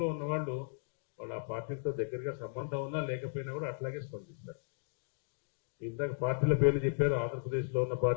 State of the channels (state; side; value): silent; right; digital silence